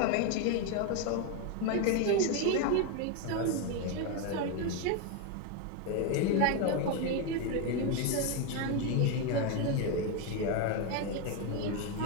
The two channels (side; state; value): both; different; correlation 0.02